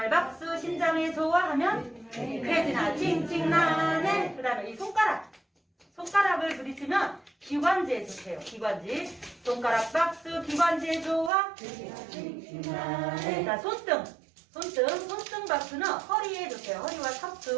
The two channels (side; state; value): left; drops out; at 11.3 s